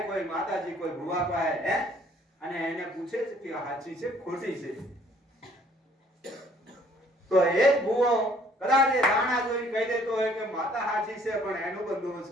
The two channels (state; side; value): normal; both; correlation 0.60